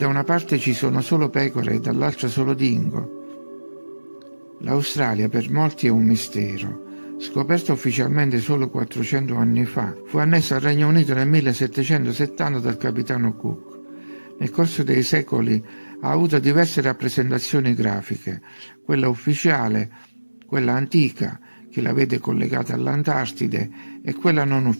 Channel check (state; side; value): inverted; both; correlation -1.00